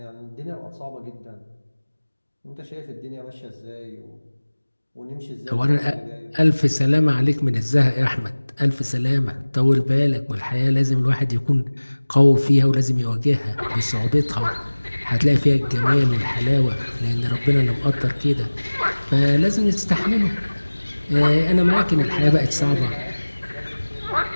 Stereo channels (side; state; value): both; inverted; correlation -1.00